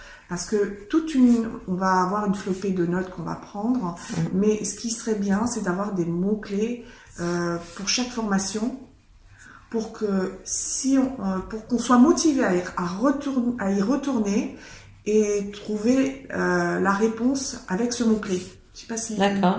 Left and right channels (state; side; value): identical; both; correlation 1.00